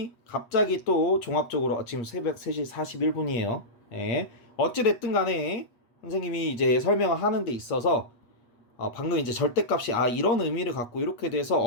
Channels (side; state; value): right; late; 8.4 ms